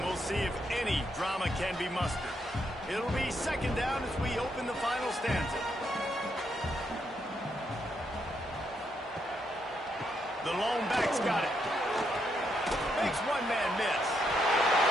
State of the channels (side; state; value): both; normal; correlation 0.78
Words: we'll see if any drama can be mustered. It'll be 2nd down as we open the final stanza. The lone back's got it. Makes one man miss.